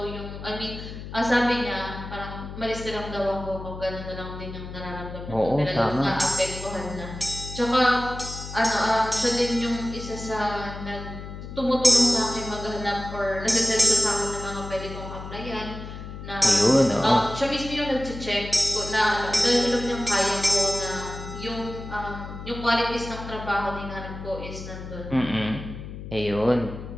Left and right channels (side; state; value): left; noise; hum, 10 dB below the sound